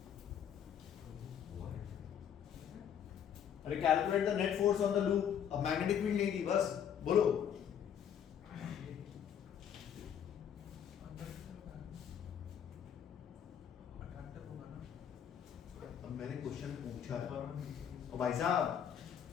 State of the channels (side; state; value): right; quieter; 8.8 dB